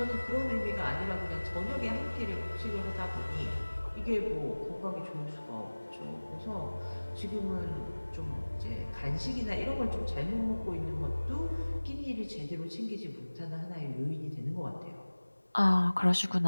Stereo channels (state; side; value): inverted; both; correlation -1.00